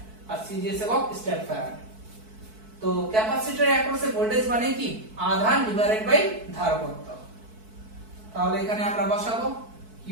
আর সিজিএস একক স্টেপ ফ্যারাড। তো ক্যাপাসিটরের অ্যাক্রসে ভোল্টেজ মানে কি আধান ডিভাইডেড বাই ধারকত্ব, তাহলে এখানে আমরা বসাবো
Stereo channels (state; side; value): late; left; 4.6 ms